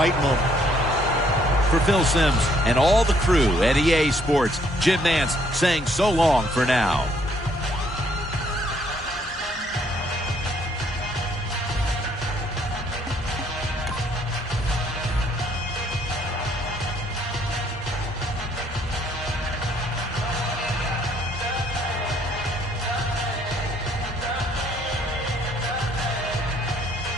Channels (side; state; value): both; normal; correlation 0.66